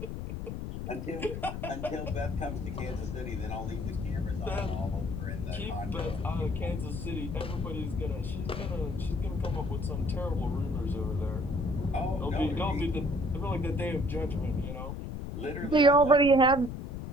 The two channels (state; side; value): noise; left; rumble, 6 dB below the sound